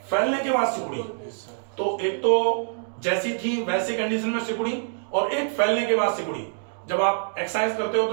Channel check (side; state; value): left; silent; digital silence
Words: फैलने के बाद सिकुड़ी। तो एक तो जैसी थी वैसी कंडीशन में सिकुड़ी, और एक फैलने के बाद सिकुड़ी। जब आप एक्सरसाइज करते हो